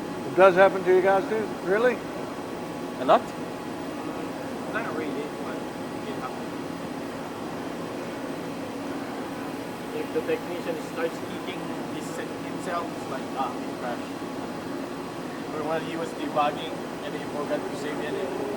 It does happen to you guys too? Really? A lot? Not really, but it happens. If the technician starts eating himself, it's like, it crashed. Or when he was debugging and he forgot to save it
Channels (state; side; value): identical; both; correlation 1.00